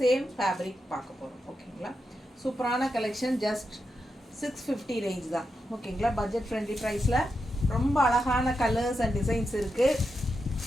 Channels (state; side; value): normal; both; correlation 0.86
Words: சேம் ஃபேப்ரிக் பார்க்க போகிறோம் ஓகேங்களா. சூப்பரான கலெக்ஷன், ஜஸ்ட் 650 ரேஞ்ச் தான் ஓகேங்களா. பட்ஜெட் ஃப்ரெண்ட்லி ப்ரைஸில் ரொம்ப அழகான கலர்ஸ் அண்ட் டிசைன்ஸ் இருக்குது.